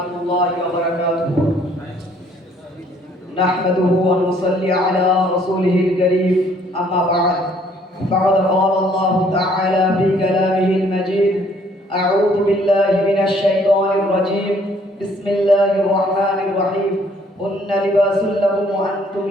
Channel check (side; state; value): both; normal; correlation 0.62